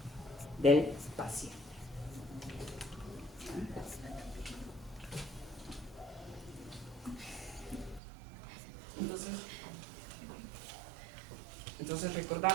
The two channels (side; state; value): left; drops out; at 8.0 s